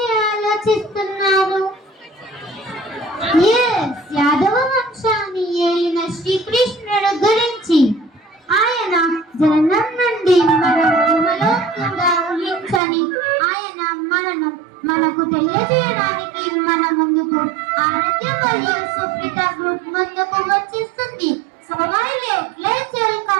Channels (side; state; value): left; drops out; at 12.8 s